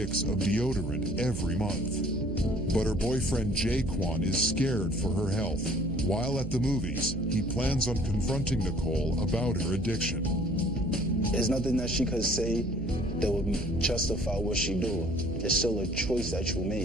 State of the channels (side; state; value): right; noise; hum, 6 dB below the sound